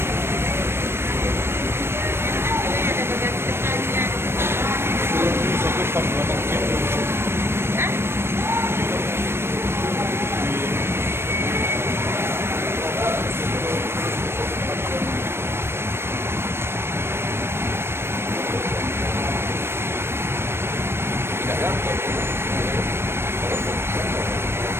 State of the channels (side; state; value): left; late; 0.12 ms